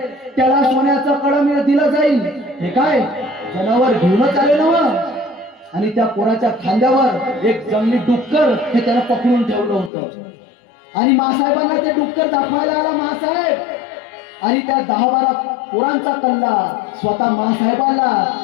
त्याला सोन्याचं कळम दिलं जाईल. हे काय जनावर घेऊनच आले ना. आणि त्या पोराच्या खांद्यावर एक जंगली डुक्कर हे त्याला पकडून ठेवलं होतं. आणि मासाहेबांना ते डुक्कर दाखवायला आला मासाहेब. आणि त्या 10-12 पोरांचा कल्ला स्वतः मासाहेबाला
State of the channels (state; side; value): drops out; right; at 9.9 s